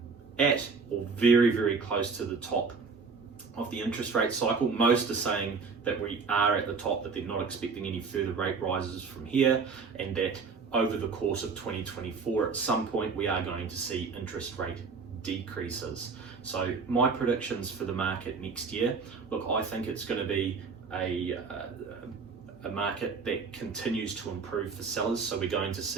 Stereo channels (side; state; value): left; quieter; 4.9 dB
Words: at or very, very close to the top of the interest rate cycle. Most are saying that we are at the top, that they're not expecting any further rate rises from here, and that over the course of 2024, at some point, we are going to see interest rate decreases. So my predictions for the market next year, look, I think it's going to be a market that continues to improve for sellers. So we're going to